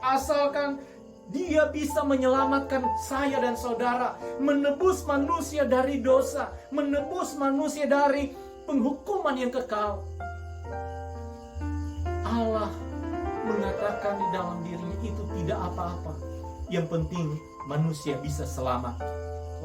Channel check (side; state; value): both; identical; correlation 1.00